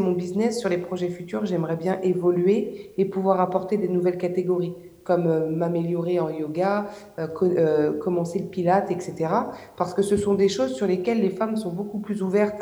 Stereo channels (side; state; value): both; identical; correlation 1.00